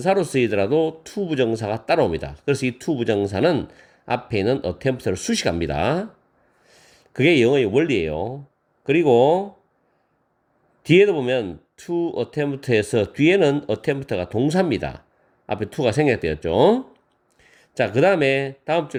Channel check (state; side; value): identical; both; correlation 1.00